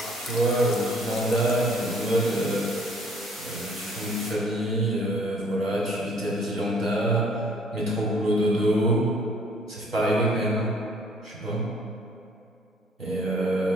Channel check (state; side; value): normal; both; correlation 0.58